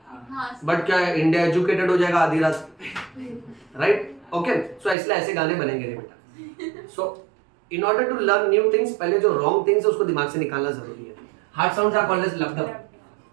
बट क्या इंडिया एजुकेटेड हो जाएगा आधी रात, राइट, ओके। सो इसलिए ऐसे गाने बनेंगे रे बेटा। So in order to learn new things, पहले जो रॉन्ग थिंग्स है उसको दिमाग से निकालना जरूरी है। Heart sounds are called as lub dub.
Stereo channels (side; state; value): left; drops out; at 5.0 s